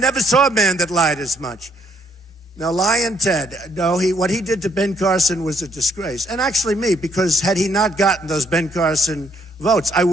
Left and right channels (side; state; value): both; normal; correlation 0.70